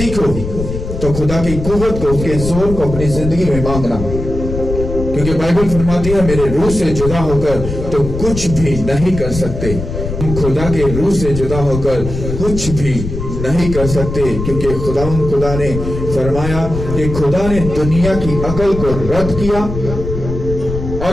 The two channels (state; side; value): noise; left; rumble, 6 dB below the sound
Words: तो खुदा की कुव्वत को, उसके जोर को अपनी जिंदगी में मांगना। क्योंकि बाइबल फरमाती है, मेरे रूह से जुदा होकर तो कुछ भी नहीं कर सकते। हम खुदा के रूह से जुदा होकर कुछ भी नहीं कर सकते, क्योंकि खुदा ने फरमाया कि खुदा ने दुनिया की अकल को रद्द किया